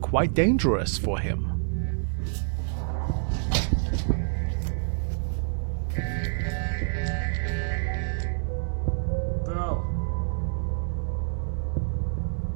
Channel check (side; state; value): left; silent; 60 dB below the other